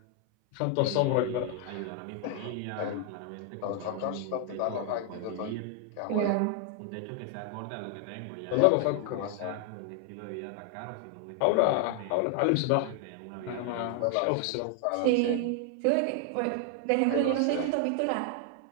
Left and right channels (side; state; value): both; different; correlation 0.00